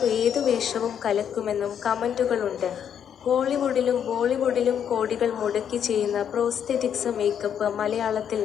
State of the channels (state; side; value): quieter; right; 8.6 dB